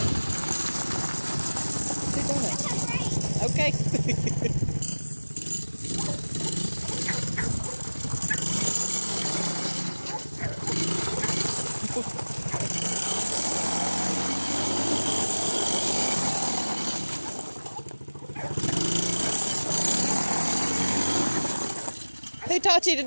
Chew donut. Okay. Who taught you to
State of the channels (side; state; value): both; inverted; correlation -1.00